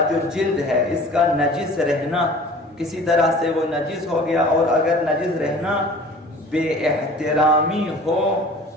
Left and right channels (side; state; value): both; normal; correlation 0.45